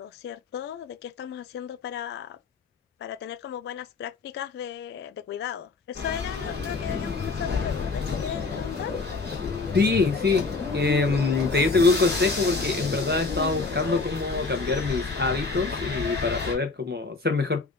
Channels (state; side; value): quieter; right; 4.0 dB